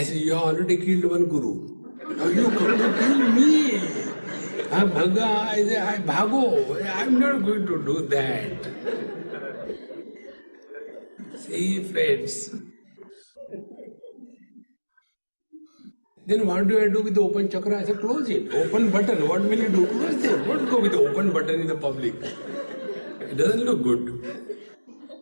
said, you have already killed one guru. Now you come to kill me. I said, I bhago. I'm not going to do that. See, friends. Then what do I do with the open chakra? I said, close it. Open button. What will you do? Close it. Don't go with the open button in the public. It doesn't look good.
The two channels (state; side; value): inverted; both; correlation -1.00